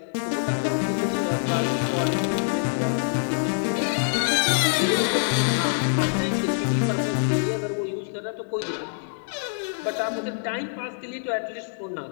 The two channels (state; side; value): silent; right; digital silence